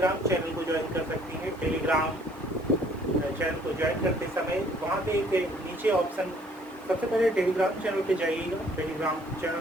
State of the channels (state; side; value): noise; right; hiss, 29 dB below the sound